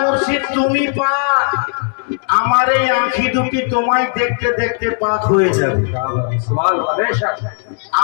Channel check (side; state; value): right; silent; 61 dB below the other